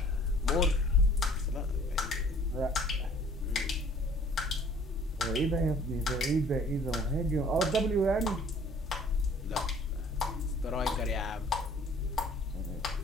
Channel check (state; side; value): normal; both; correlation 0.54